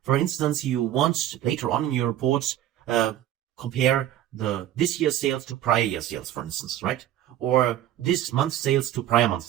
for instance, you want later on in your report, compare this year's sales to prior year sales, for instance, right? Or this month's sales to prior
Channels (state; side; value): quieter; left; 12.4 dB